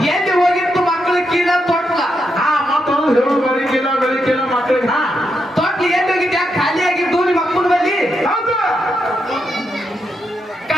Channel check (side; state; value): both; normal; correlation 0.82